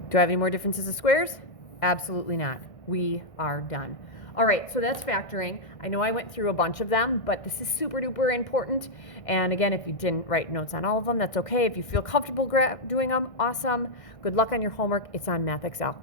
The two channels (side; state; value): right; late; 1.6 ms